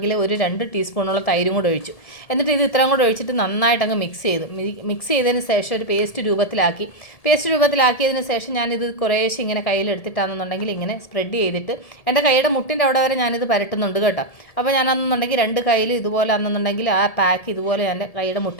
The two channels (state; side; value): late; right; 1.7 ms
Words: ഒരു 2 ടീസ്പൂണോളം തൈരും കൂടെ ഒഴിച്ചു. എന്നിട്ട് ഇത് ഇത്രയും കൂടെ ഒഴിച്ചിട്ട് നന്നായിട്ട് അങ്ങ് മിക്സ് ചെയ്തതിന് ശേഷം ഒരു പേസ്റ്റ് രൂപത്തിലാക്കിയതിന് ശേഷം ഞാനിത് കുറേശ്ശെ ഇങ്ങനെ കയ്യിലെടുത്തിട്ടാണെന്നുണ്ടെങ്കിൽ ഇങ്ങനെ സ്പ്രെഡ് ചെയ്തിട്ട് എൻ്റെ കൈയുടെ മുട്ടിൻ്റെ അവിടെ വരെ ഞാനിത് പരട്ടുന്നുണ്ട് കേട്ടോ. അപ്പോൾ ഞാനാണെന്നുണ്ടെങ്കിൽ 2 കൈയിൽ ഇതുപോലെ ആണെന്നുണ്ടെങ്കിൽ ആ പാക്ക് ഇതുപോലെ എൻ്റെ കൈയുടെ